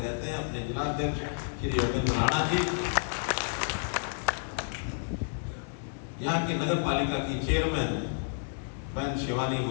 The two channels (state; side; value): silent; right; 58 dB below the other